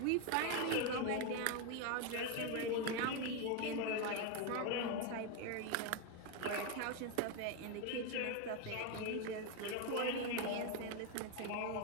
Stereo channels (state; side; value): different; both; correlation 0.02